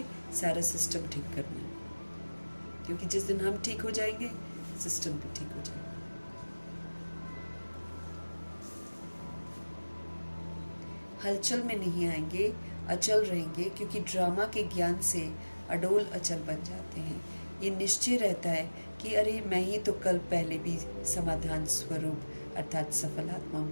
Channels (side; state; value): both; inverted; correlation -1.00